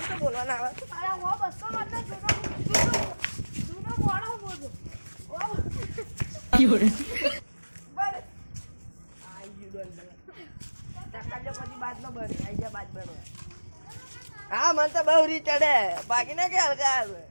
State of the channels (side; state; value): both; inverted; correlation -1.00